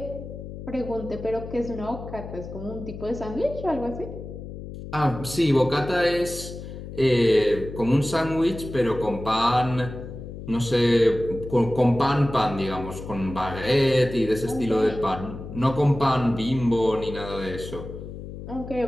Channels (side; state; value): left; noise; hum, 11 dB below the sound